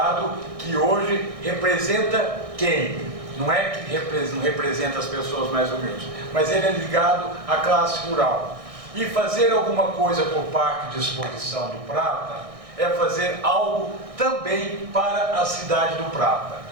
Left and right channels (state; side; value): late; left; 1.6 ms